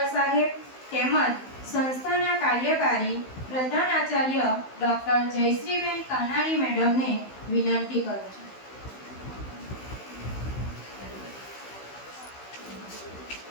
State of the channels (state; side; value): late; right; 16 ms